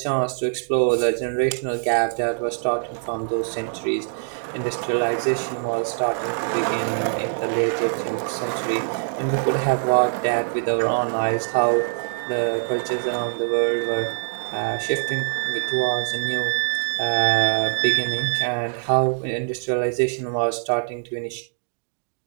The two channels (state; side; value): silent; left; digital silence